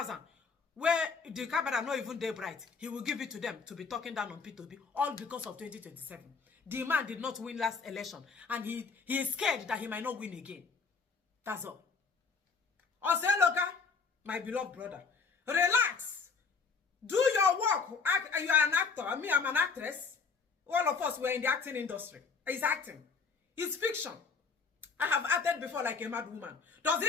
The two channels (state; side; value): quieter; right; 5.1 dB